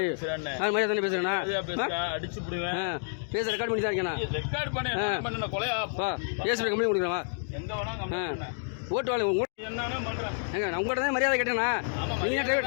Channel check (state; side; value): silent; right; digital silence